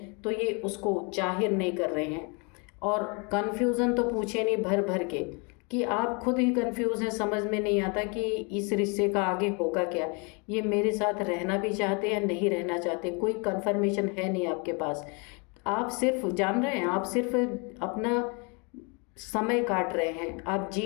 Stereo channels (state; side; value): quieter; right; 32.7 dB